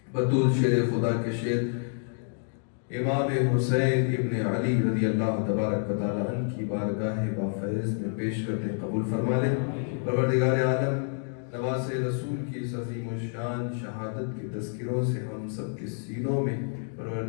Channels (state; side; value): silent; right; 59 dB below the other